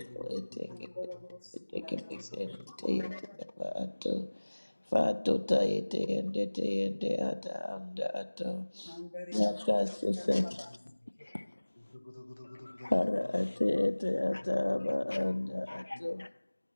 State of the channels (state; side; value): inverted; both; correlation -1.00